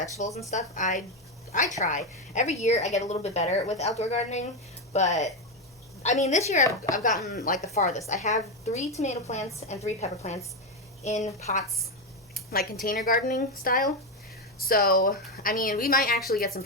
and stuff, I try. Every year I get a little bit better with outdoor gardening, but, I mean, this year I've gotten, like, the farthest. I have 3 tomato plants and 3 pepper plants in pots, like container gardening style. So, I mean, we might actually get some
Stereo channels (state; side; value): normal; both; correlation 0.09